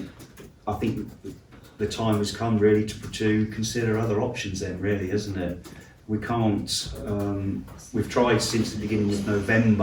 I think the time has come really to consider other options. Then, really, isn't it? We can't. We've tried since the beginning of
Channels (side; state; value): both; identical; correlation 1.00